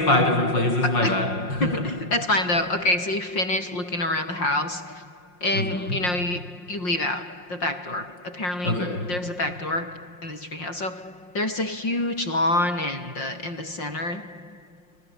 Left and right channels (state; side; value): late; right; 5.6 ms